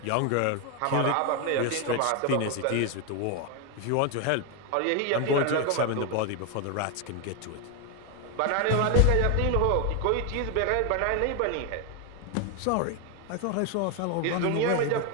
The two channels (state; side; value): different; both; correlation 0.01